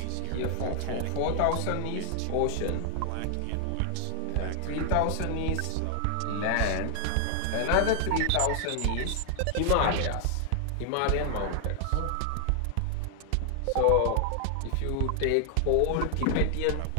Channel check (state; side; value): different; both; correlation 0.00